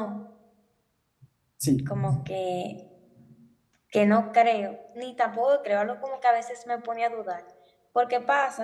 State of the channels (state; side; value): identical; both; correlation 1.00